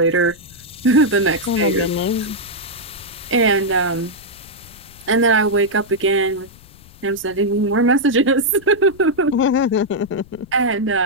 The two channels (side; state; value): left; noise; rumble, 23 dB below the sound